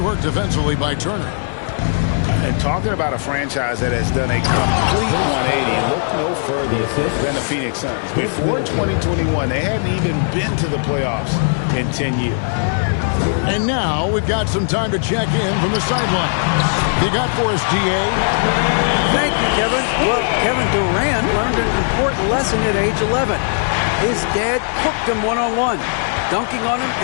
work defensively by Turner. And talking about a franchise that has done a complete 180, look no further than the Phoenix Suns. Before 2021, they hadn't even been to the playoffs in 10 years. And now we've got some time to check in from the sidelines. You got for us, DA? Thank you, Kevin. Well, Kevin Durant learned an important lesson at age 11. His dad cooked him one-on-one, dunking on him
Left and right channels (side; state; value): right; silent; digital silence